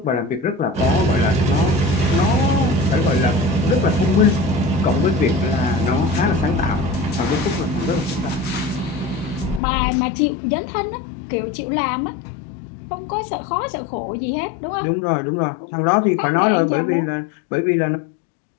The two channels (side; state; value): right; drops out; at 9.6 s